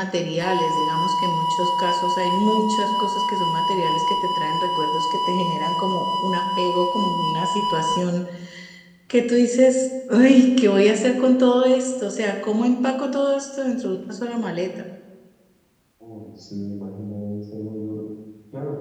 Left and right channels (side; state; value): both; identical; correlation 1.00